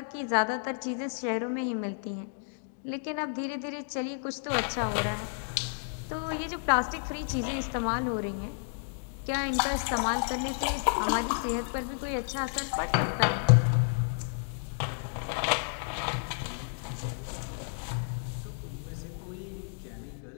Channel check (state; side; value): silent; right; digital silence